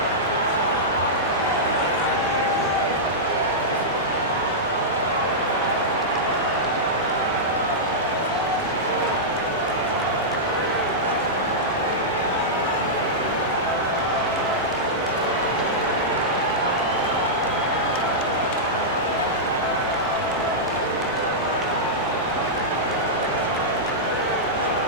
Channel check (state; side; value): normal; both; correlation -0.11